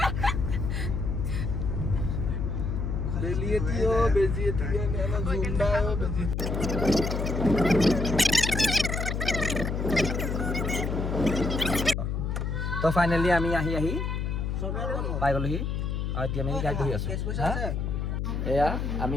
তো ফাইনেলি আমি আহি পাই গ'লোহি আৰু এতিয়া আমি গাড়ীত বহি আছোঁ। এয়া আমি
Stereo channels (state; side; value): noise; left; hum, 1 dB below the sound